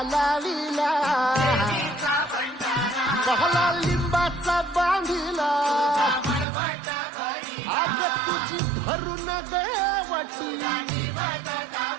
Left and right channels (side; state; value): left; drops out; at 6.5 s